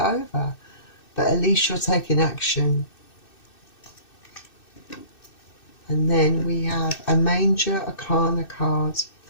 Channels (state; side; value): late; right; 2.6 ms